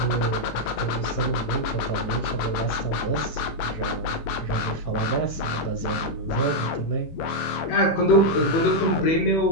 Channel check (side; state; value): right; late; 18 ms